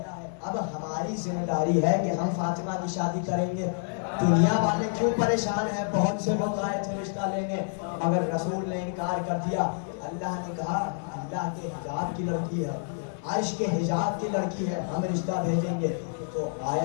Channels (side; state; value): right; silent; digital silence